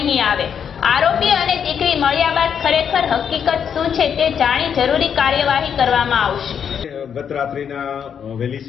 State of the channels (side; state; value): right; quieter; 7.7 dB